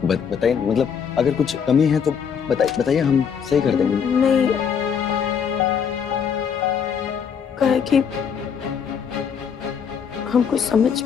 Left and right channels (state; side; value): quieter; right; 7.1 dB